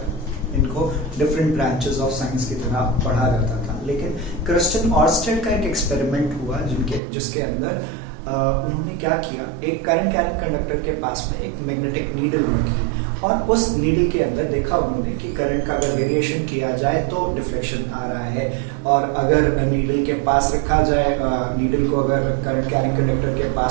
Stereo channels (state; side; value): drops out; left; at 7.0 s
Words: इनको डिफरेंट ब्रांचेस ऑफ साइंस की तरह पढ़ा जाता था. लेकिन क्रिस्टियन ऑर्स्टेड का एक एक्सपेरिमेंट हुआ जिसके अंदर उन्होंने क्या किया, एक करंट कैरिंग कंडक्टर के पास में एक मैग्नेटिक नीडल रखी और उस नीडल के अंदर देखा उन्होंने कि करंट का अगर वेरिएशन किया जाए तो डिफ्लेक्शन आ रहा है, और अगर नीडल के पास रखा जाए, नीडल को अगर करंट कैरिंग कंडक्टर के